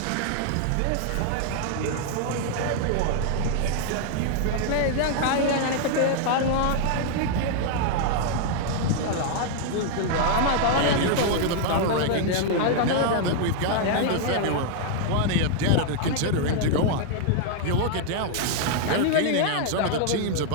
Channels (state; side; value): different; both; correlation 0.00